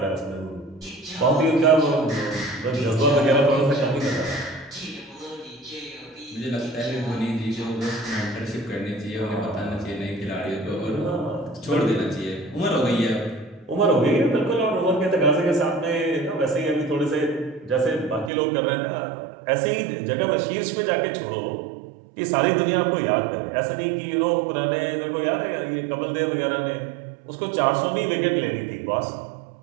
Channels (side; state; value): left; drops out; at 18.3 s